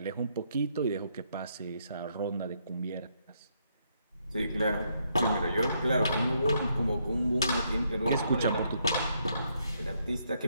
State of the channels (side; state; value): both; inverted; correlation -0.74